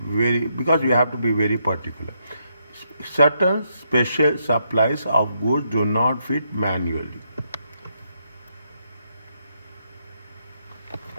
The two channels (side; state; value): both; inverted; correlation -0.78